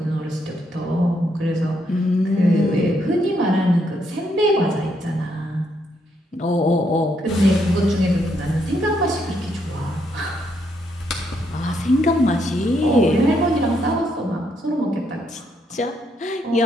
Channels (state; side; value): normal; both; correlation 0.75